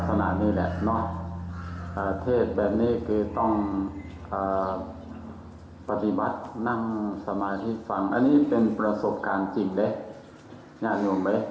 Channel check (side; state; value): both; identical; correlation 1.00